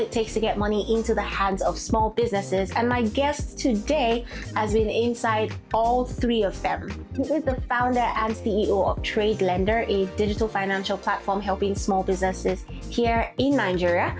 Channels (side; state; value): both; identical; correlation 1.00